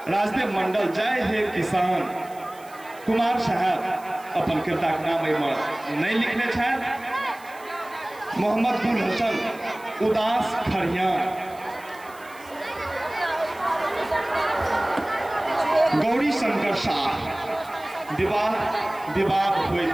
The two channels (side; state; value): right; noise; hiss, 23 dB below the sound